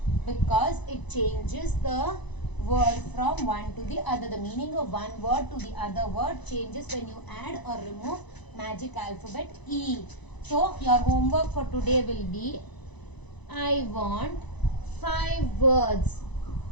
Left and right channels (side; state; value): right; late; 1.0 ms